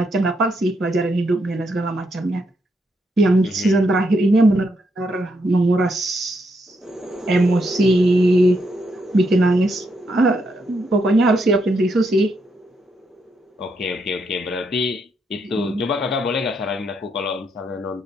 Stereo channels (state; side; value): normal; both; correlation 0.79